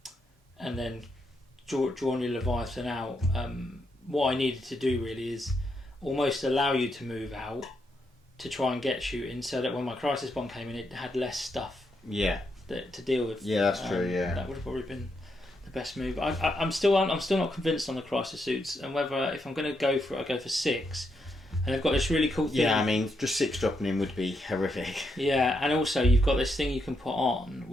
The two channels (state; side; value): normal; both; correlation 0.81